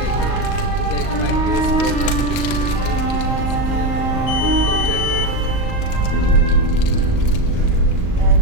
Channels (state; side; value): late; right; 38 ms